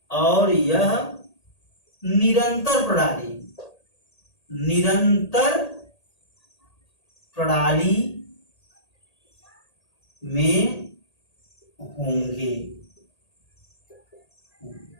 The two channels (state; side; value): late; right; 1.8 ms